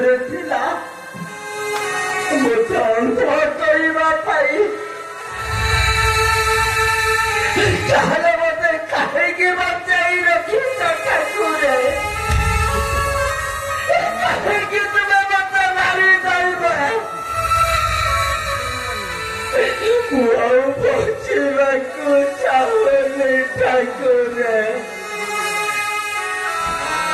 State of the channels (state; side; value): identical; both; correlation 1.00